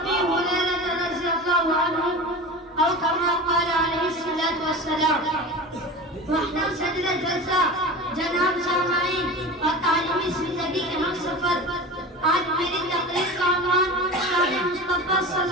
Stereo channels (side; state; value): both; normal; correlation 0.31